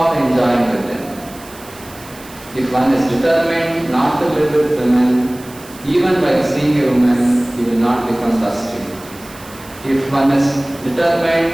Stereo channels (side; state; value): right; noise; hiss, 20 dB below the sound